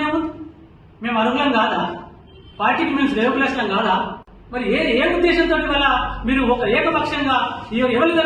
ఏముంది? మేము అర్హులం కాదా? పార్టీకి మేము శ్రేయోభిలాషం కాదా? మరి ఏ ఉద్దేశంతో వల్ల మీరు ఒక ఏకపక్షంగా ఎవరు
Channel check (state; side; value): identical; both; correlation 1.00